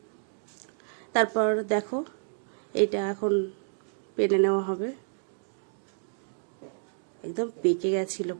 তারপর দেখো এটা এখন পেরে নেওয়া হবে। একদম পেকে গেছিলো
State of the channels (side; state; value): left; silent; digital silence